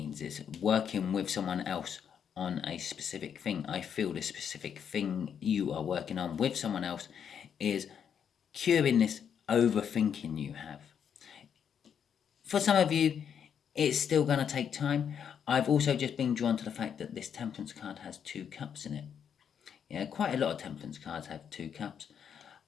it's working with someone else on a specific thing. I feel the specific thing you are working on with someone else is curing this overthinking you have. For some of you, it's still going to take time. I've also just been drawn to the fact that this Temperance card has 2 cups in it. Yeah, quite a lot of Temperance cards have 2 cups.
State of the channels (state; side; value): quieter; right; 7.9 dB